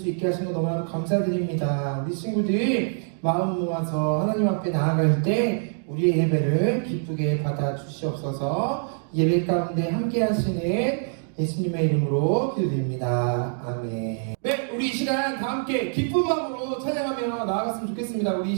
있게 하신 거 너무나도 감사드립니다. 우리 친구들 마음 모아서 하나님 앞에 나아갈 때 우리의 예배를 기쁘게 받아주시옵소서. 예배 가운데 함께 하시는 예수님의 이름으로 기도드립니다. 아멘. 네, 우리 이 시간 다 함께 기쁜 마음으로 찬양하며 나아갔으면 좋겠습니다. 우리 이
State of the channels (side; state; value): left; silent; digital silence